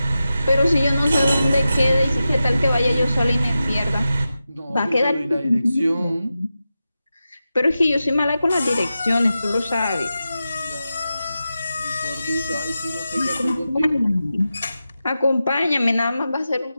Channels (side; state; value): both; inverted; correlation -0.92